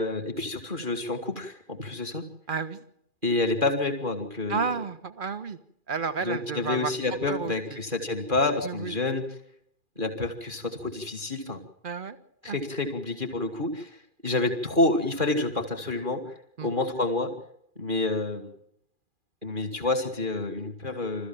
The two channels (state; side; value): late; left; 2.4 ms